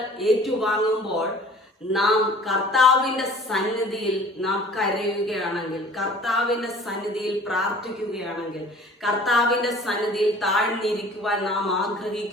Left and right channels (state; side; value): normal; both; correlation 0.48